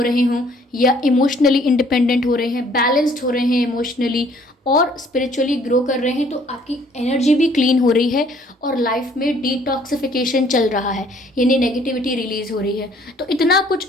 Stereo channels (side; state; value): both; normal; correlation 0.60